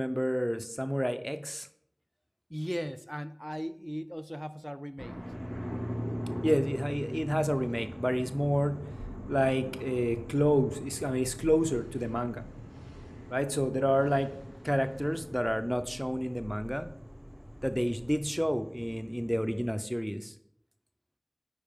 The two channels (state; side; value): identical; both; correlation 1.00